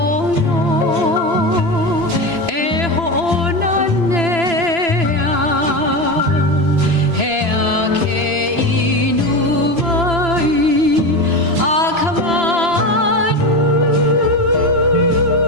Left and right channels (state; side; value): late; left; 3.0 ms